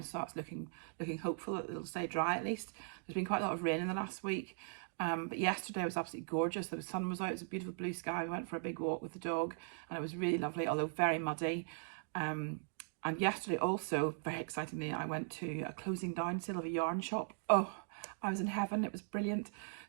so that's looking hopeful that it'll stay dry at least. There's been quite a lot of rain in the last week, but yesterday was absolutely gorgeous. The sun was out, it was a beautiful blue sky. We went for a big walk with the dog and it was really lovely, although very muddy. And yesterday also, very excitingly, I went to a closing down sale of a yarn shop. Oh, I was in heaven, it was brilliant.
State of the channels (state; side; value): silent; left; digital silence